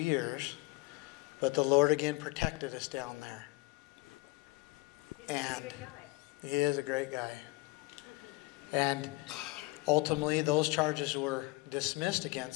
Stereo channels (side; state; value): right; quieter; 22.6 dB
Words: but the Lord again protected us down there. And He is a great guy. And ultimately, those charges were dismissed